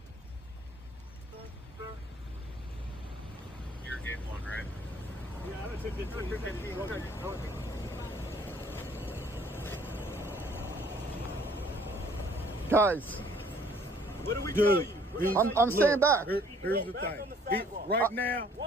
You're game one, right? Yeah, I took 15. Guys, What do we tell you? I'm staying back. Here's the thing.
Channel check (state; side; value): normal; both; correlation 0.59